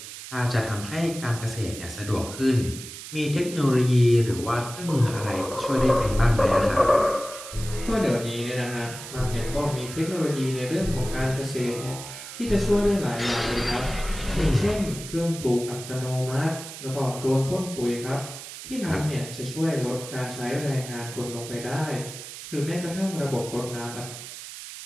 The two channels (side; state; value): right; noise; hiss, 12 dB below the sound